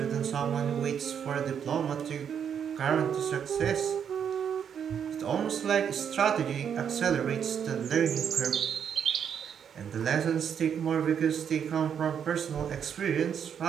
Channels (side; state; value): left; quieter; 8.0 dB